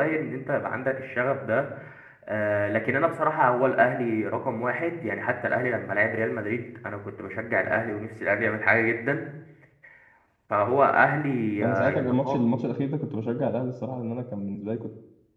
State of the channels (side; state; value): both; identical; correlation 1.00